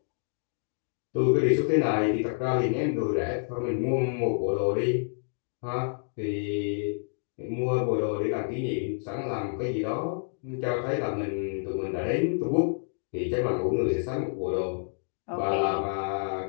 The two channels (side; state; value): right; silent; digital silence